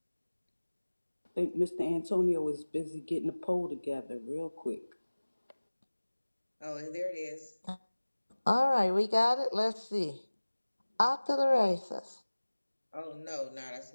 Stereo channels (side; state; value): both; inverted; correlation -1.00